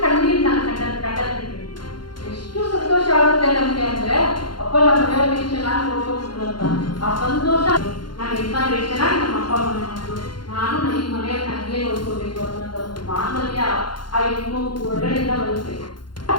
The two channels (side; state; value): right; late; 0.71 ms